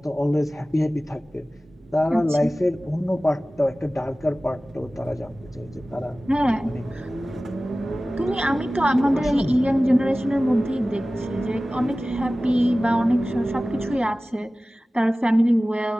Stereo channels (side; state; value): both; normal; correlation 0.97